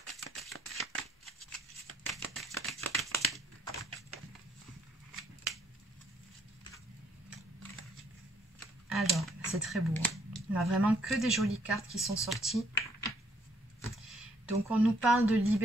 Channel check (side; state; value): both; normal; correlation 0.68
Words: Alors, c'est très beau. On a vraiment que des jolies cartes qui sont sorties. Donc, on nous parle de